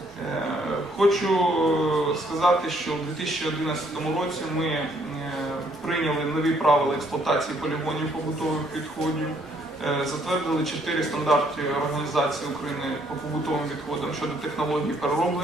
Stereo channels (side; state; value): both; normal; correlation 0.67